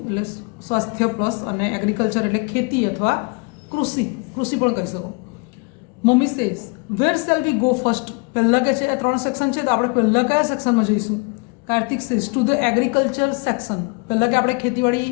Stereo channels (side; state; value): right; quieter; 32.0 dB